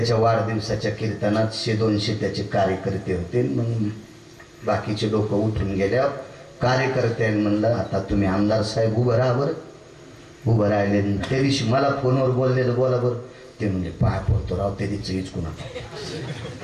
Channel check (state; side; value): identical; both; correlation 1.00